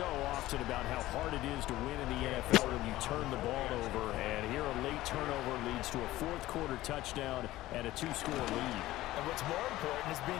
often about how hard it is to win in the NFL when you turn the ball over. And here a late turnover leads to a 4th quarter touchdown and a 2-score lead. And what's more important is being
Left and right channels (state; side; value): quieter; right; 16.3 dB